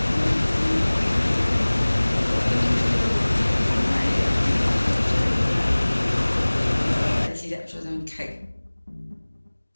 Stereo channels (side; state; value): both; inverted; correlation -1.00